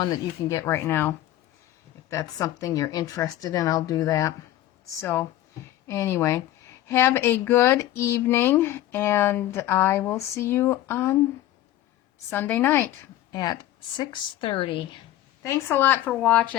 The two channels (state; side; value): quieter; right; 13.8 dB